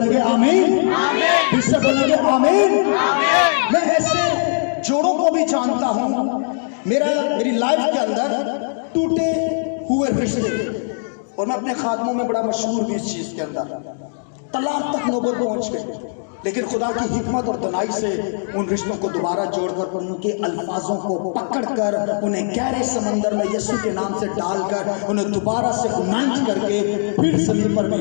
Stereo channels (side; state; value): right; silent; digital silence